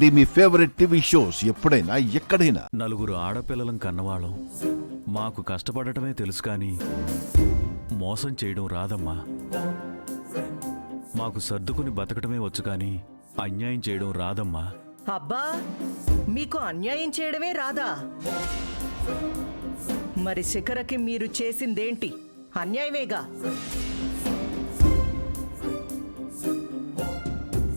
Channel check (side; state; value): both; inverted; correlation -1.00